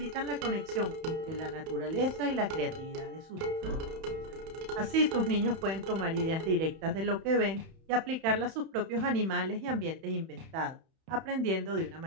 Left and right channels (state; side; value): late; left; 31 ms